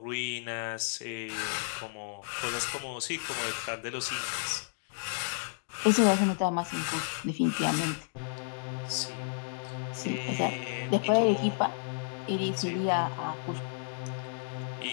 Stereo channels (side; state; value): right; silent; digital silence